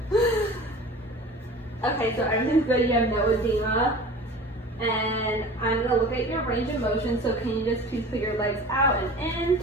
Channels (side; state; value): both; normal; correlation 0.39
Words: Okay, so everything's good. You have no edema. And I'm going to look at your range of motion, so can you just please put your legs out and